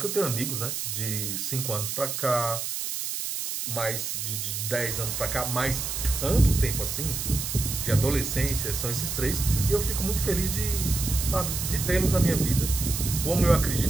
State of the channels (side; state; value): right; noise; hiss, 3 dB below the sound